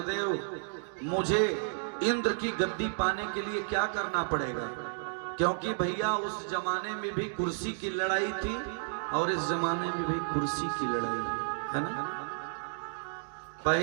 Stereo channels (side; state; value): left; silent; digital silence